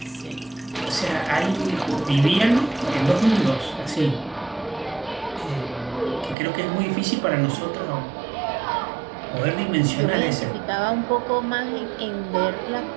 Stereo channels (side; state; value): left; drops out; at 6.4 s